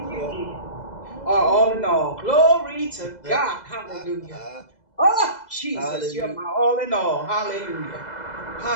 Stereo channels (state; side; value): late; right; 2.0 ms